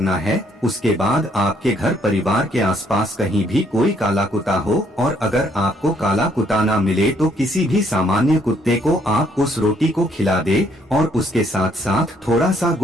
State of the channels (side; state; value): both; normal; correlation 0.68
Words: है। उसके बाद आपके घर परिवार के आसपास कहीं भी कोई काला कुत्ता हो, और अगर आपको काला कुत्ता ना मिले तो किसी भी सामान्य कुत्ते को आप उस रोटी को खिला दे और उसके साथ साथ थोड़ा सा